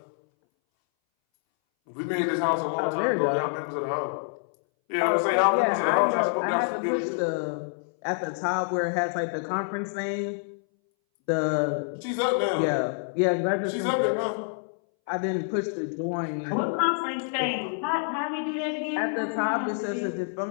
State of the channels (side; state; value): right; silent; 60 dB below the other